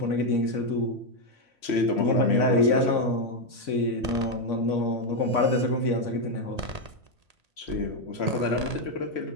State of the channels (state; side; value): late; left; 1.8 ms